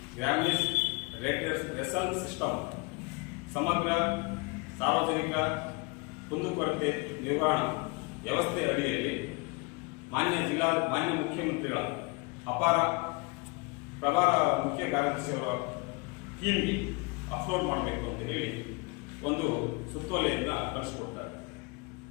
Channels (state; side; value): quieter; right; 28.8 dB